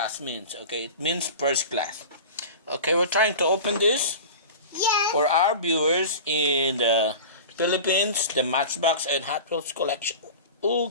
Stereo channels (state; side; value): inverted; both; correlation -0.33